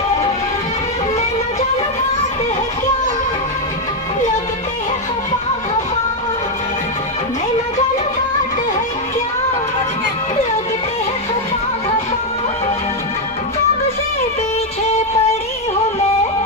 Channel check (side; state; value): both; normal; correlation 0.03